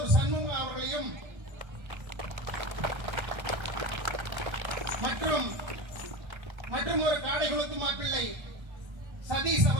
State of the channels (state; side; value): late; left; 1.3 ms